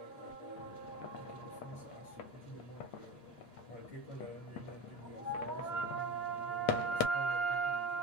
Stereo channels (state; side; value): late; right; 8.6 ms